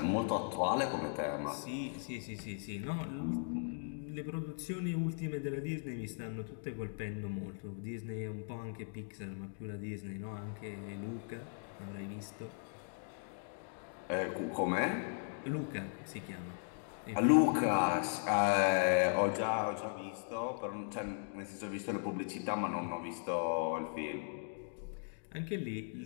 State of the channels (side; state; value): right; silent; digital silence